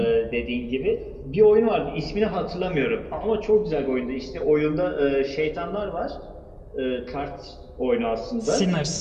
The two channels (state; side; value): identical; both; correlation 1.00